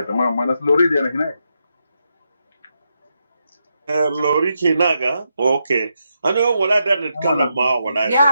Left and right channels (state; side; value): inverted; both; correlation -0.83